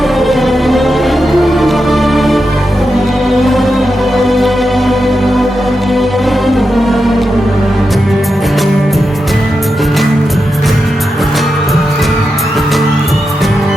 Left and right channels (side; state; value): both; normal; correlation 0.88